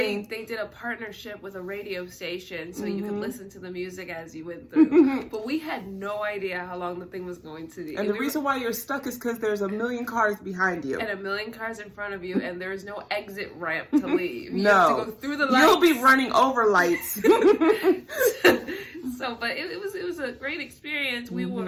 They did a partnership with a radio station, so you could listen to the music as you went through. But we had no idea how long the thing was going to be. And the reason why you're stuck is because there's a million cars behind you. And a million cars in front of you, and there is no exit ramp to leave. You No. have to go through the lights. You'll be running over lights. So, but it was a great experience.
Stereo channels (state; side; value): identical; both; correlation 1.00